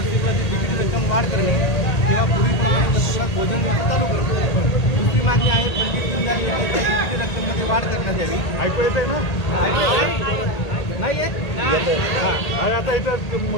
तिकीट रक्कम वाढ करणे किंवा पूर्वीप्रमाणे वसतिगृहात भोजन व्यवस्था चालू करणे. दुसरी मागणी आहे पंडित दीनदयाल योजनेच्या तिकीट रक्कममध्ये वाढ करण्यात यावी. ऐकू येत आहे ना? नाही येत. अरे आता इथं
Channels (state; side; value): late; right; 1.8 ms